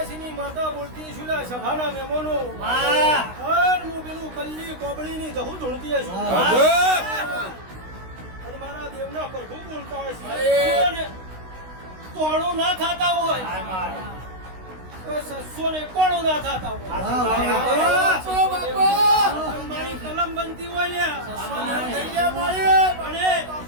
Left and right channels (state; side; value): late; left; 16 ms